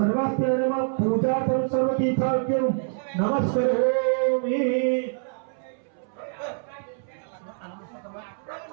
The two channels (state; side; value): silent; left; 61 dB below the other